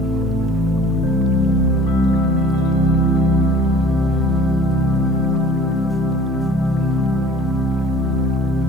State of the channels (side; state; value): both; normal; correlation 0.47